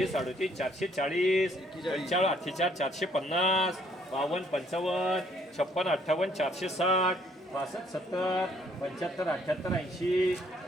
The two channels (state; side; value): normal; both; correlation 0.65